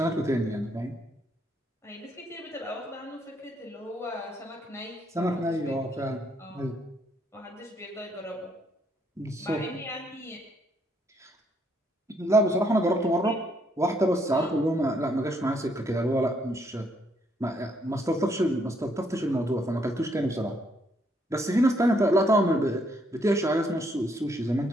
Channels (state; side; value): normal; both; correlation 0.72